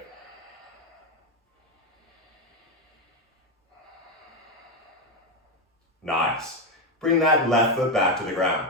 Nice. Bring that left foot back to the ground.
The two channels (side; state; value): both; normal; correlation 0.09